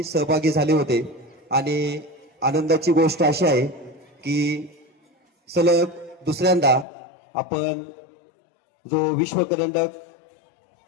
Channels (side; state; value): right; drops out; at 6.9 s